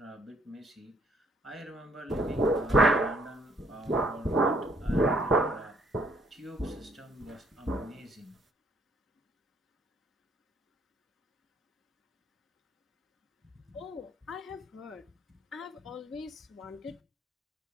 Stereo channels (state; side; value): normal; both; correlation 0.66